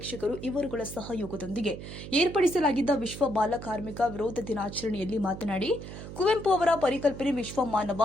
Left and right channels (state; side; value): noise; right; hum, 11 dB below the sound